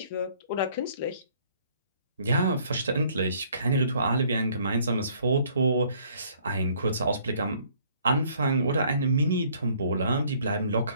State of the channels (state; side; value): inverted; both; correlation -0.60